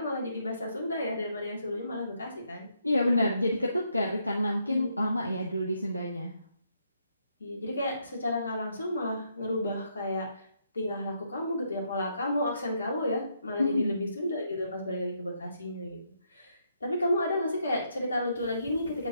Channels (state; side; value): inverted; both; correlation -0.76